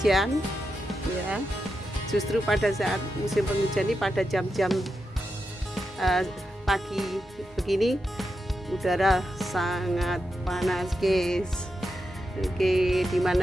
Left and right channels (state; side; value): normal; both; correlation 0.87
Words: ya. Justru pada saat musim penghujan ini, pada jam-jam pagi begini, udara sangat panas guys. Oke,